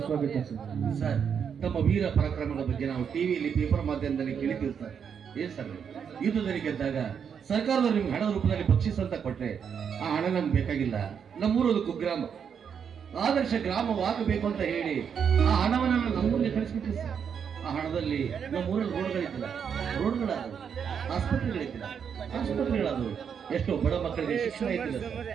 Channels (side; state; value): left; quieter; 7.3 dB